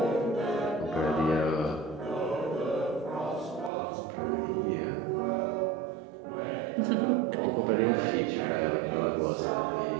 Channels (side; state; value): left; drops out; at 3.7 s